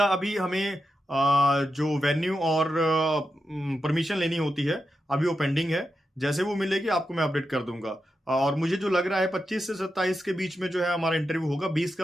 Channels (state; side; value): normal; both; correlation 0.88